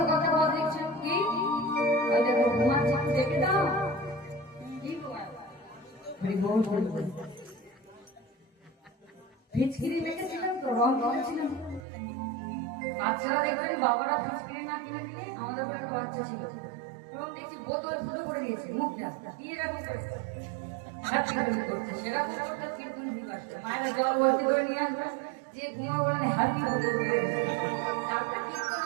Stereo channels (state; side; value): drops out; left; at 11.9 s